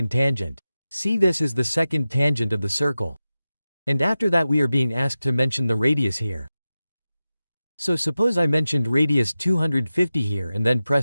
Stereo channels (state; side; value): inverted; both; correlation -0.94